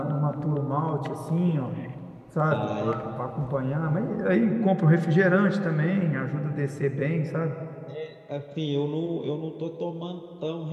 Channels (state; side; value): identical; both; correlation 1.00